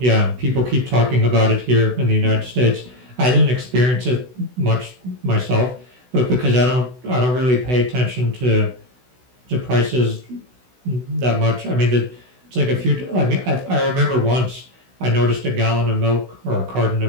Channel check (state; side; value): late; left; 16 ms